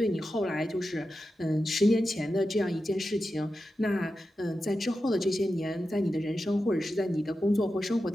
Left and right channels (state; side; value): normal; both; correlation 0.91